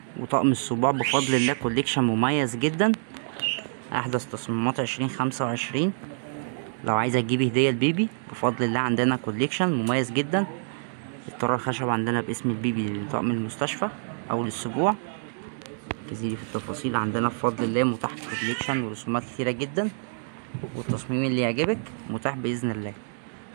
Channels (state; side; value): silent; left; digital silence